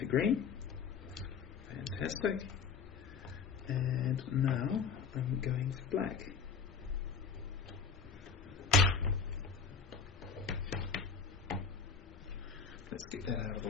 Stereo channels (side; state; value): right; quieter; 5.6 dB